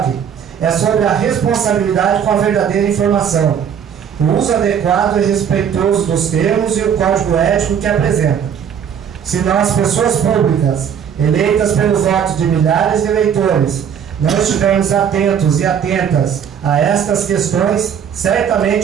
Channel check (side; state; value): left; quieter; 8.1 dB